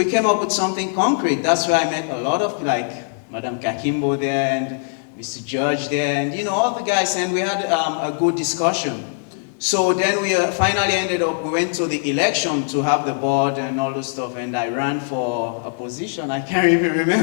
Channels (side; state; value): right; silent; digital silence